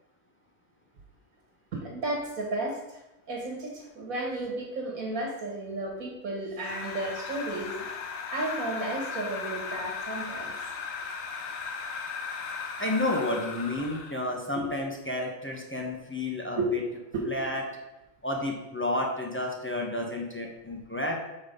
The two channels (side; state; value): both; normal; correlation -0.03